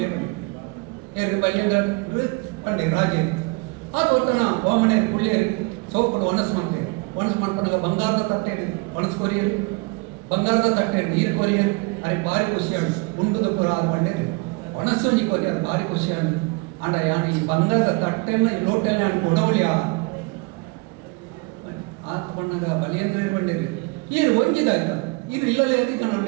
ಏರು ಬಲ್ಯಂದ್ರ ಪಂಡೆ ರಾಜೇ ಅದು ಒತ್ತಣ ವಾಮನೆ ಕುಳ್ಳಿಯರು ಸೋಪಡು ಒಣಸು ಮಾಡ್ಕೊಂಡಾಗ ಬಂಗಾರದ ತಟ್ಟೆ ಒಣಸು ಕೊರಿಯರು ಬಂಗಾರದ ತಟ್ಟೆ ನೀರು ಕೊರಿಯರು ಅರೆ ಭಾರಿ ಖುಷಿಯಾಡು ಉಂಡುದ ಪುರ ಅದು ಪಂಡೇರಿ ಒಣಸೊಂಜಿ ಕೊರಿಯರು ಭಾರಿ ಖುಷಿಯಾಡು ಅಂಡ ಯಾನು ಈ ಬಂಗಾರದ ತಟ್ಟೆನ ಈ ಲೋಟೆಲ್ಲ ಅನ್ಕೊ ಉಡವಳಿಯ ಆತ ಬಣ್ಣಗ ಬಲಿಯಂದ್ರ ಬಂಡೇರಿ ಈರು ಒಂಜಿದಾಯ್ತ ಇದು ಇಲ್ಲಲೇ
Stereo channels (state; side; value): quieter; left; 27.7 dB